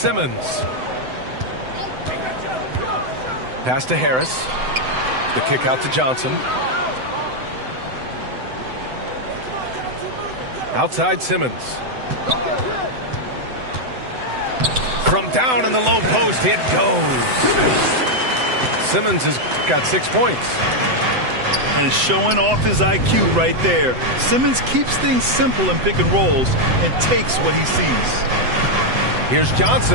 Pass to Harris. The kick out to Johnson. Outside Simmons. From down in the low post, it goes. Simmons has got 6 points. And showing off his IQ right there. Simmons keeps things simple in pick and rolls and takes what he sees. Here's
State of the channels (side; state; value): left; late; 7.9 ms